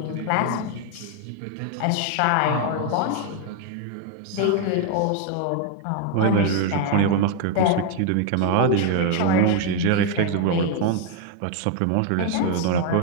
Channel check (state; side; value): different; both; correlation 0.00